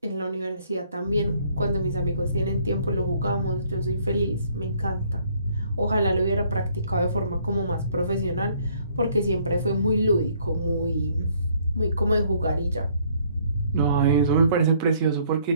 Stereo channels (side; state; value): both; inverted; correlation -0.64